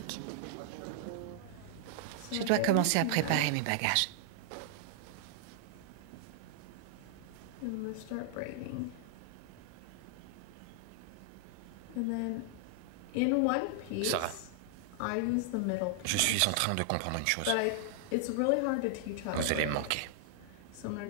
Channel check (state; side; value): different; both; correlation 0.00